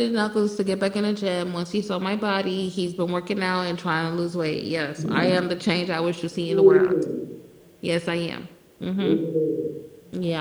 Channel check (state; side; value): identical; both; correlation 1.00